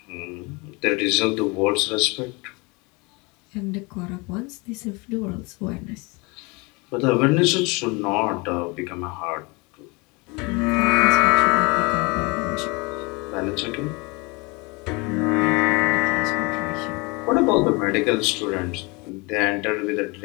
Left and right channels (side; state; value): right; quieter; 27.7 dB